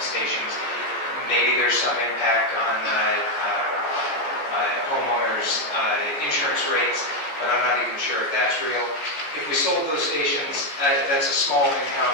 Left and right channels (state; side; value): late; right; 14 ms